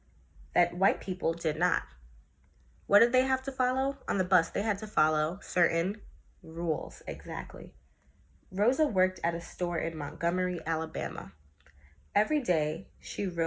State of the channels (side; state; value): both; identical; correlation 1.00